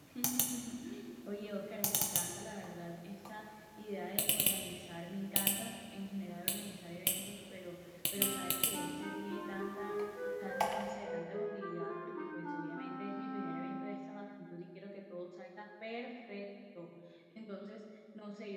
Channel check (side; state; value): both; identical; correlation 1.00